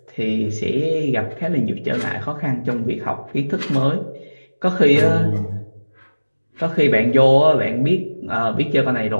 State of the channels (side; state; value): both; inverted; correlation -1.00